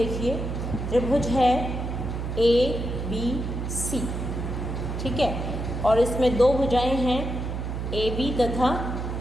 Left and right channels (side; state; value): right; noise; hum, 4 dB below the sound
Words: त्रिभुज है ABC, ठीक है, और इसमें दो भुजाएं हैं AB तथा